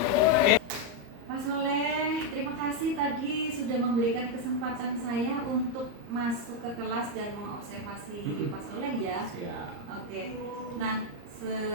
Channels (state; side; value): late; left; 34 ms